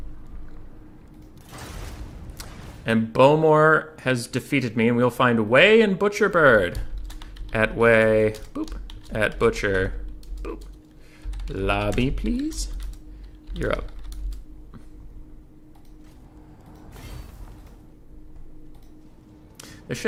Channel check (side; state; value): both; identical; correlation 1.00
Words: And Bowmore has defeated me, and we'll find Way and Butcherbird. At Way, boop. At Butcher, boop. Lobby, please. You're up. This